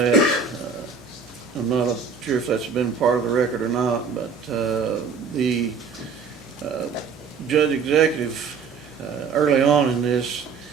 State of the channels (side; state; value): left; quieter; 5.5 dB